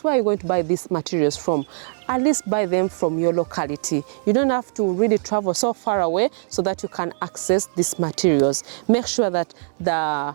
where are you going to buy these materials from? At least buy them from your locality. You don't have to really travel so far away so that you can access these materials. Make sure that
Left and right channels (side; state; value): left; silent; digital silence